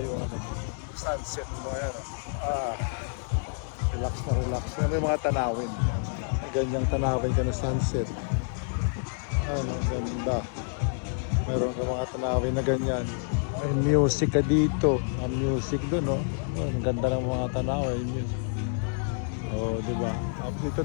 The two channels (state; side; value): silent; right; 59 dB below the other